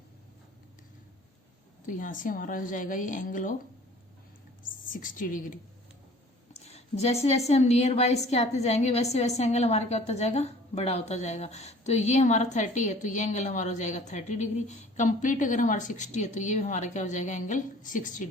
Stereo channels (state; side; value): normal; both; correlation 0.49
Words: तो यहां से हमारा हो जाएगा ये एंगल ऑफ 60 डिग्री. जैसे जैसे हम नियर बाय इसके आते जाएंगे वैसे वैसे एंगल हमारा क्या होता जाएगा, बड़ा होता जाएगा. तो ये हमारा 30 है, तो ये एंगल हमारा हो जाएगा 30 डिग्री. कंप्लीट अगर हमारा 60 है तो ये भी हमारा क्या हो जाएगा, एंगल 60